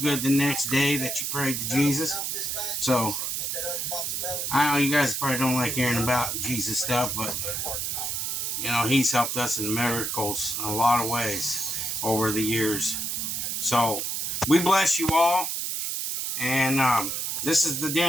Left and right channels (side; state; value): right; noise; hiss, 2 dB below the sound